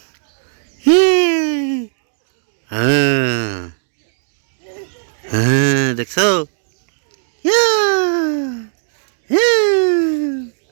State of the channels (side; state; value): left; silent; digital silence